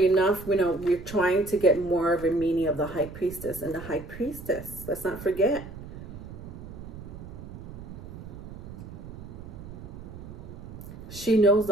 enough, you know, we're trying to get more of a meaning of the High Priestess. And the High Priestess, let's not forget, she knows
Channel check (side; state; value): right; noise; rumble, 12 dB below the sound